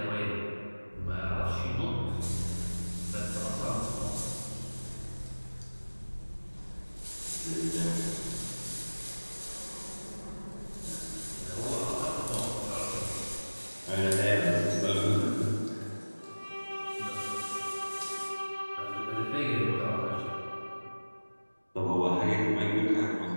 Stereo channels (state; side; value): inverted; both; correlation -1.00